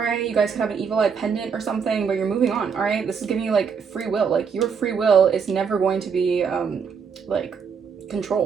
You guys could have an evil eye pendant or something, but you're moving on, all right? This is giving you, like, free will. Like, your free will is never going to be, like,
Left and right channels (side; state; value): left; quieter; 6.3 dB